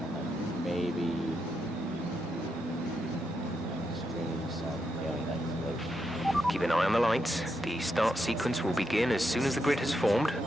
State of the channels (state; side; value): normal; both; correlation 0.83